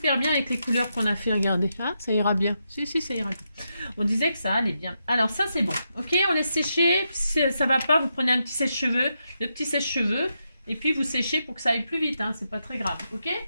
bien avec les couleurs qu'on a fait, regardez. Hein, ça ira bien. Si, ça ira bien. On disait que ça allait bien. Alors, ça, c'est bon. Ok, on laisse sécher. Si ça va pas, vous prenez un petit sèche-cheveux. Le petit sèche-cheveux. Et puis, vous séchez pour que ça aille plus vite. Hein, c'est pas très grave. Ok?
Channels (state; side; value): inverted; both; correlation -0.84